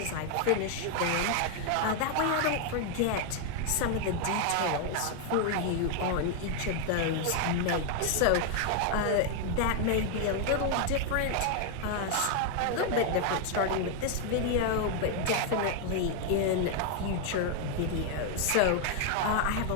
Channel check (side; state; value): both; different; correlation 0.00